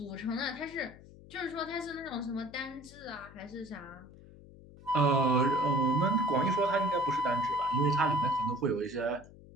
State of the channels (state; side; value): noise; left; hum, 20 dB below the sound